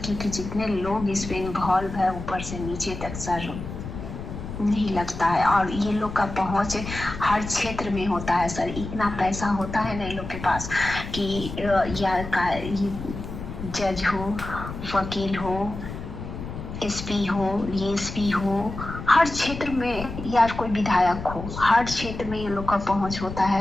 क्योंकि जितने लोग इस पे इन्वॉल्व है ऊपर से नीचे तक सर, नहीं लगता है। और ये लोग का पहुंच हर क्षेत्र में होता है सर, इतना पैसा होता है ना इन लोग के पास कि ये जज हो, वकील हो, एसपी हो, डीएसपी हो, हर क्षेत्र में, या कोई विधायक हो, हर क्षेत्र में ये लोग का पहुंच होता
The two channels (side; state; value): left; noise; rumble, 9 dB below the sound